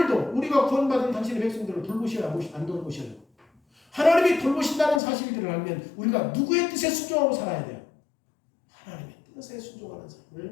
우리가 구원받은 당신의 백성들을 돌보셔야 안 돌보셔요? 하나님이 돌보신다는 사실들을 알면 우리가 누구의 뜻에 순종하고 살아야 돼요? 하나님의 뜻에 순종하는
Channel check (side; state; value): right; drops out; at 5.0 s